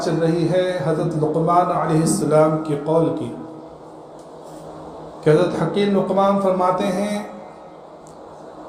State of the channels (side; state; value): both; identical; correlation 1.00